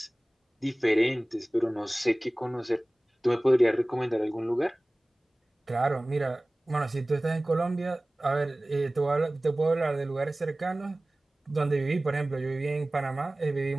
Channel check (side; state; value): both; normal; correlation 0.98